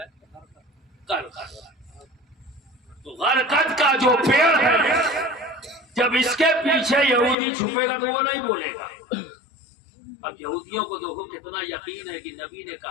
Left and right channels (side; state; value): right; drops out; at 7.4 s